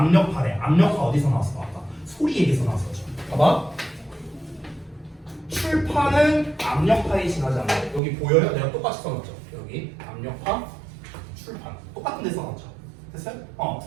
압력파 어디서 나왔어? 아까 소리 얘기에서 나왔었죠. 봐봐. 출판은 압력파에 지나지 않는다. 여기 보여요? 내가 똑같이 써놨죠. 여기 압력파 출판 똑같은 데 써놨죠. 됐어요?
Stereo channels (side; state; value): left; drops out; at 8.0 s